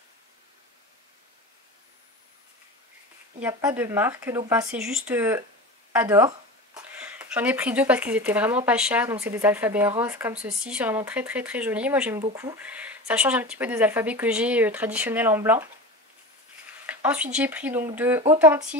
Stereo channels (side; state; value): both; normal; correlation 0.29